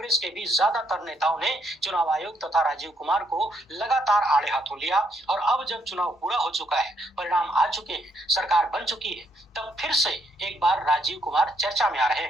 के भी ज्यादातर नेताओं ने चुनाव आयोग तथा राजीव कुमार को लगातार आड़े हाथों लिया। और अब जब चुनाव पूरा हो चुका है, परिणाम आ चुके हैं, सरकार बन चुकी है, तब फिर से एक बार राजीव कुमार चर्चा में आ रहे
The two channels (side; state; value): both; normal; correlation 0.73